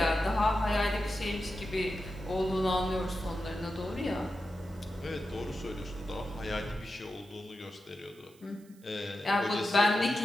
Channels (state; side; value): noise; right; hiss, 28 dB below the sound